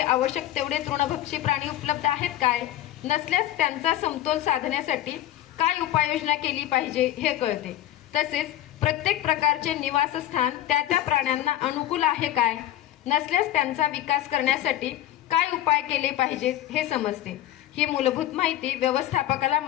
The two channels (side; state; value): right; quieter; 13.0 dB